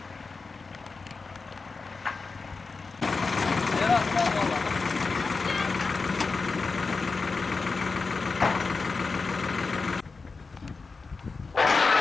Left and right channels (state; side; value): quieter; right; 4.3 dB